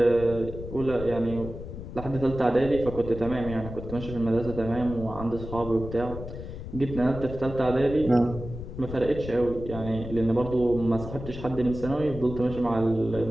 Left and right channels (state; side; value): noise; left; rumble, 10 dB below the sound